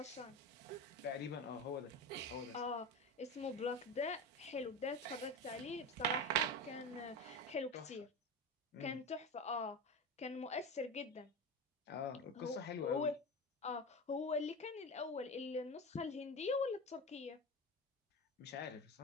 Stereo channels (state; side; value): normal; both; correlation 0.24